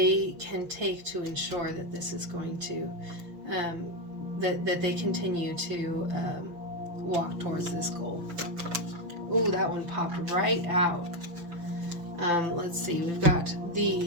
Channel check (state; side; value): late; left; 5.8 ms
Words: can take to ensure that this is going to, that they continue to walk towards this goal. Ooh, that one popped right out. Let's see, we've got